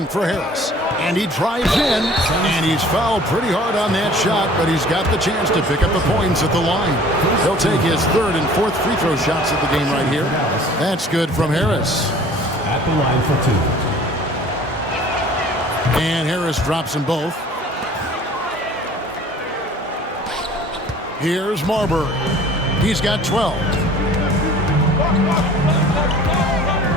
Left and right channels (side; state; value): both; normal; correlation 0.49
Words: for Harris. And he drives in, and he's fouled pretty hard on that shot, but he's got the chance to pick up the points at the line. He'll take his 3rd and 4th free throw shots at the game right here. That's good from Harris. At the line for 2. And Harris drops them both. Here's Marbury. He's got 12.